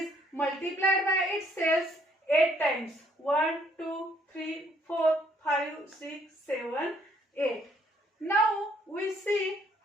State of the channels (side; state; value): both; normal; correlation 0.66